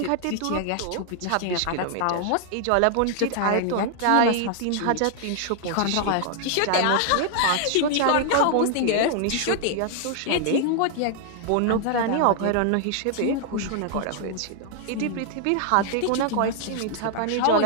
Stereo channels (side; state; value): both; different; correlation 0.00